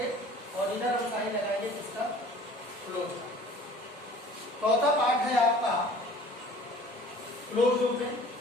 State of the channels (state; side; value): normal; both; correlation 0.48